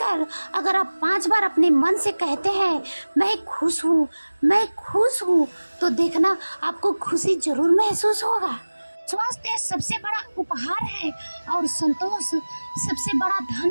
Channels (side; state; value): both; inverted; correlation -1.00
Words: अगर आप 5 बार अपने मन से कहते हैं, मैं खुश हूँ, मैं खुश हूँ, तो देखना आपको खुशी जरूर महसूस होगा। स्वास्थ्य सबसे बड़ा उपहार है और संतोष सबसे बड़ा